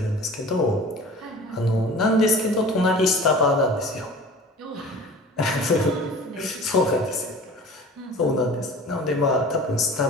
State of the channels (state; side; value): normal; both; correlation 0.41